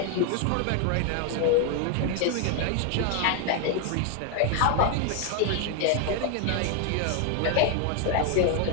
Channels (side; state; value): both; different; correlation 0.01